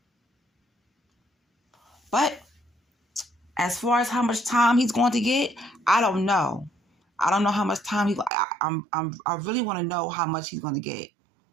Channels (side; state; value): left; drops out; at 8.3 s